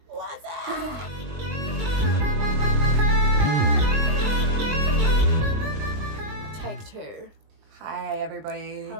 What's up? Take two. Hi, everybody.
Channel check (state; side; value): late; left; 20 ms